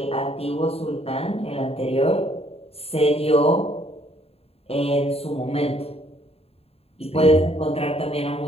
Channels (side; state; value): right; late; 0.29 ms